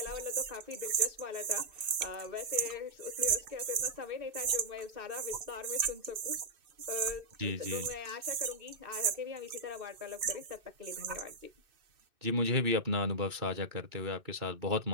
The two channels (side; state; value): left; late; 2.6 ms